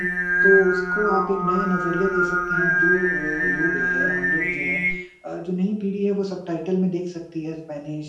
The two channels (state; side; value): identical; both; correlation 1.00